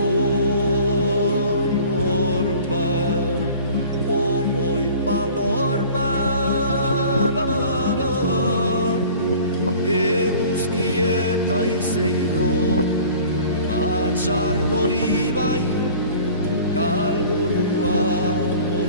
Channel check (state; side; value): inverted; both; correlation -0.45